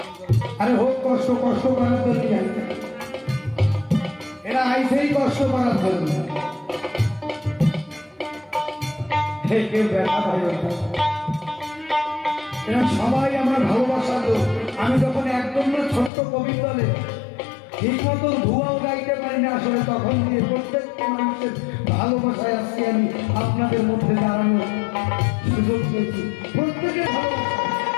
আরে হোক কষ্ট, কষ্ট করার জন্য এরা আইসেই কষ্ট করার জন্য। কেউ ব্যথা পাই, এরা সবাই আমার ভালোবাসার লোক। আমি যখন একদম না ছোট্ট কবি দলে ঠিক মতো ধোঁয়াও গাইতে পারি না আসলে, তখন দিয়ে প্রত্যেকটা মানুষের ভালোবাসায় আজকে আমি আপনাদের মধ্যে দাঁড়ানোর সুযোগ পেয়েছি। প্রত্যেকের ভালোবাসা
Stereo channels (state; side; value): drops out; right; at 16.1 s